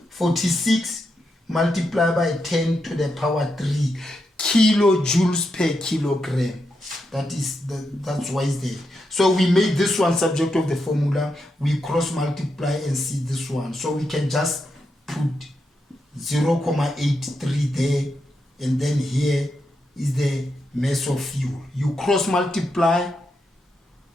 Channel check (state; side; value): normal; both; correlation 0.84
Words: 46 multiplied by 10 to the power 3 kilojoules per kilogram. That's why it's there. So we made this one subject of the formula. We cross multiply and see this one. So we can just put 0.83 there, and then here is the mass of fuel. You cross multiply,